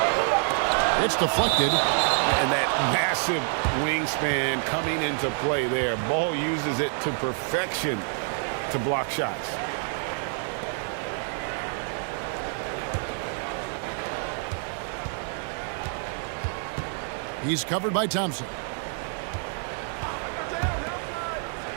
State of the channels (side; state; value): left; silent; 55 dB below the other